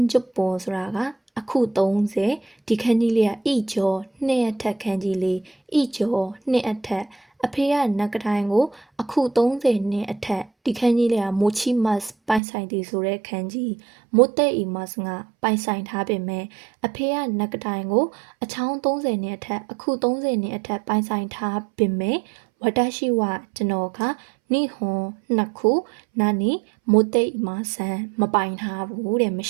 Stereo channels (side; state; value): left; drops out; at 12.4 s